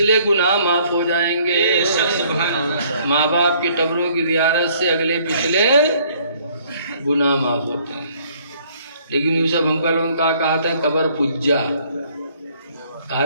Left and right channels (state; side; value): inverted; both; correlation -0.61